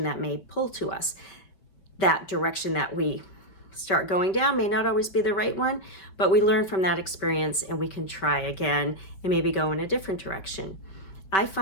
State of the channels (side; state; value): right; late; 5.4 ms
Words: that may pull to us. That direction that we start going down may not always be the right one, but we learn from that experience and we can try again and maybe go in a different direction. I